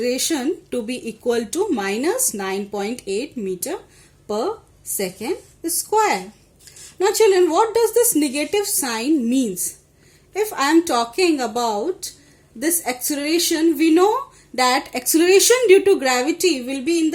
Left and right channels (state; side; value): identical; both; correlation 1.00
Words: to be equal to minus 9.8 meter per second square. Now children, what does this negative sign means? If I am talking about this acceleration, we know that acceleration due to gravity will be in